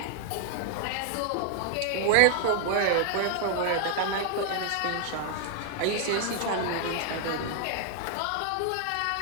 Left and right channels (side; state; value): both; different; correlation 0.00